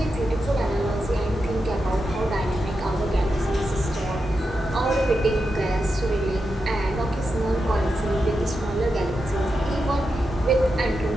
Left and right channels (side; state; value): both; normal; correlation 0.88